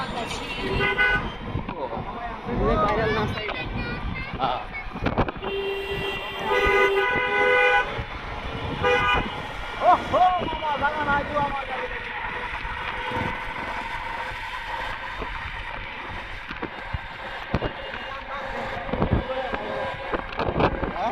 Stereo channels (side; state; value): both; identical; correlation 1.00